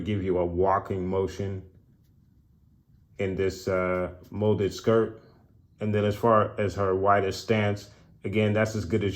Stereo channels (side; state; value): both; identical; correlation 1.00